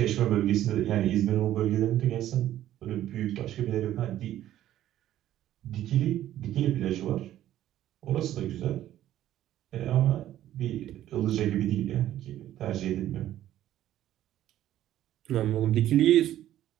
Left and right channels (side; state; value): left; quieter; 12.7 dB